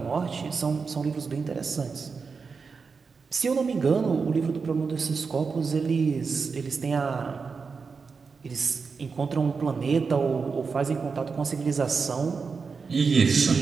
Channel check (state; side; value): quieter; left; 5.1 dB